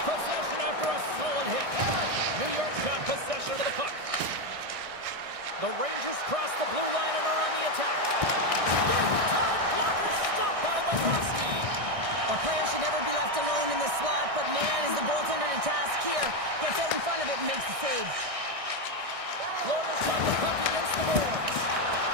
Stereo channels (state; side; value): late; left; 1.6 ms